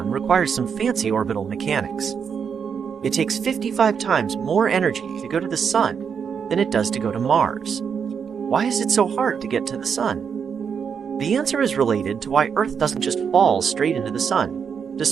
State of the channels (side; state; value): left; quieter; 6.8 dB